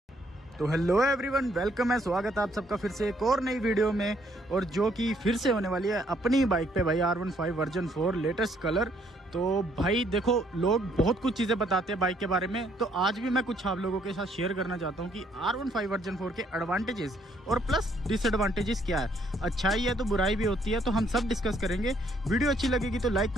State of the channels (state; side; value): normal; both; correlation 0.68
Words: तो हेलो एवरीवन, वेलकम है, स्वागत है आप सबका फिर से एक और नई वीडियो में। और जो कि फिर से होने वाली है अपनी बाइक पे भाई R15 वर्जन 4 लेटेस्ट कलर। तो भाई देखो, लोग बहुत कुछ चीज़ें बताते हैं बाइक के बारे में, तो आज भी मैं कुछ आप लोगों के साथ शेयर करना चाहता हूँ कि R15 वर्जन 4 के एडवांटेजेस और प्लस डिसएडवांटेजेस क्या है। अच्छाई है तो बुराई भी होती है, तो हम सब डिस्कस करेंगे। वीडियो अच्छी लगेगी तो लाइक